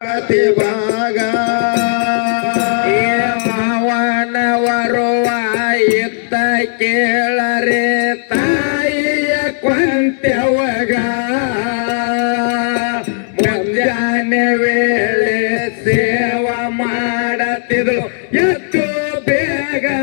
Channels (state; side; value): silent; right; digital silence